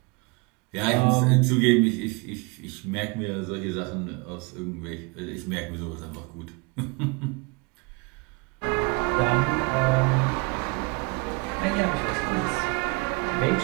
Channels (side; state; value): left; quieter; 28.9 dB